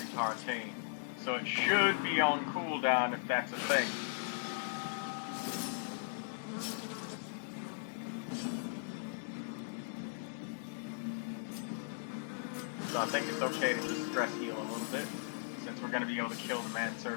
so it should be on cooldown if that's a thing. So I think it's okay to just stress heal a little bit, since we're going to be able to kill the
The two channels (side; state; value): right; silent; digital silence